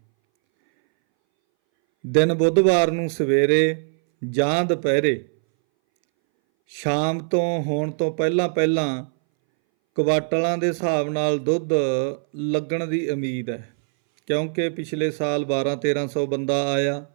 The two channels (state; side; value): silent; left; 62 dB below the other